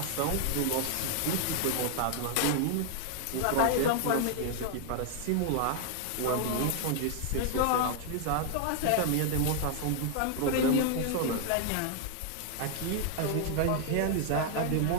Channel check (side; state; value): both; different; correlation 0.00